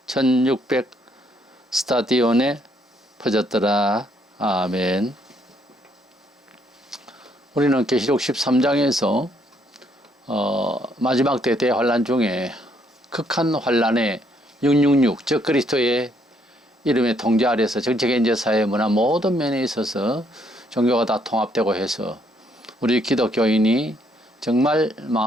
1600 스타디온에 퍼졌더라. 아멘. 우리는 계시록 13장에서 마지막 때 대환란 중에 극한 환란의 666 적 그리스도의 이름의 통제 아래서 정치, 경제, 사회, 문화 모든 면에 있어서 종교가 다 통합되고 해서 우리 기독교인이 정말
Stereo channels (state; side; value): normal; both; correlation 0.70